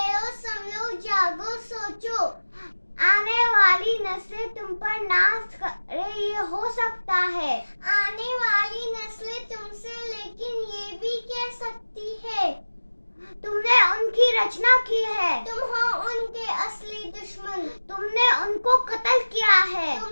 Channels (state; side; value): inverted; both; correlation -1.00